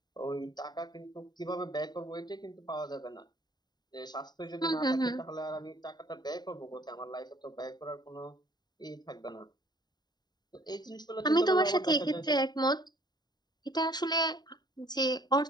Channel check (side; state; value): right; late; 0.20 ms